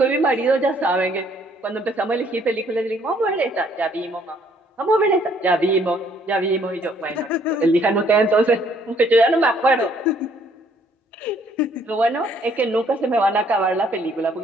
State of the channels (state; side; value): normal; both; correlation 0.64